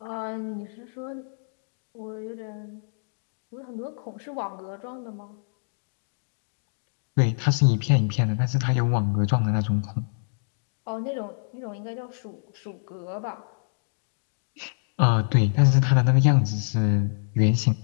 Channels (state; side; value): silent; right; digital silence